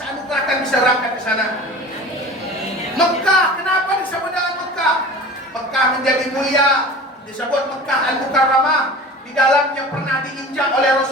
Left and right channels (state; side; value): normal; both; correlation 0.38